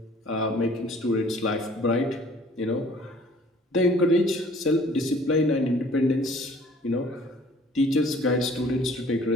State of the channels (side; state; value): both; normal; correlation 0.54